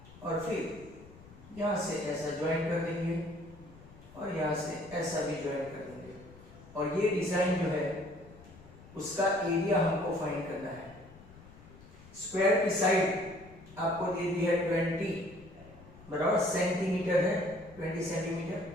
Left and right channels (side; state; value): left; noise; rumble, 20 dB below the sound